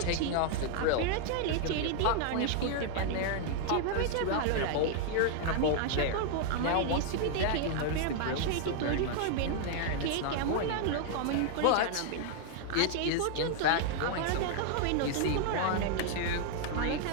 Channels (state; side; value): different; both; correlation 0.00